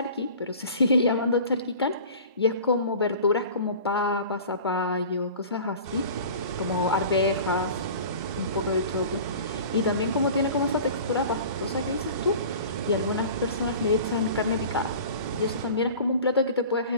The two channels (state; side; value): inverted; both; correlation -0.41